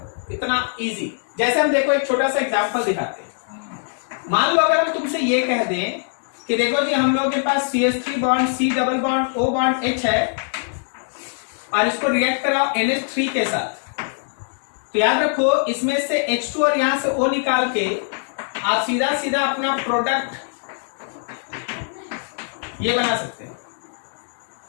इतना इजी। जैसे हम देखो एक छोटा सा एग्जांपल दिखाते हैं। मान लो अगर हम तुमसे ये कह दें कि देखो जी हम लोगों के पास CH3 bond C double bond O bond H है, और इसको रिएक्ट कराओ NH3 के साथ, तो याद रखो इसमें से H2 और यहां से O निकाल के आप सीधा सीधा अपना प्रोडक्ट ये बना सकते हैं।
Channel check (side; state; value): right; silent; 64 dB below the other